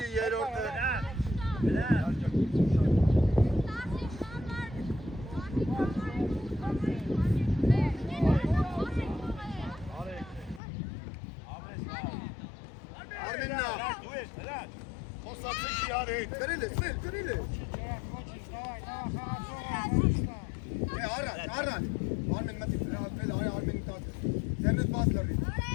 yer orada. Kırılı. Araç. Armen matik bırak. Armen'i taktı. Cennet bazıları.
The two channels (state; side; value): drops out; right; at 10.6 s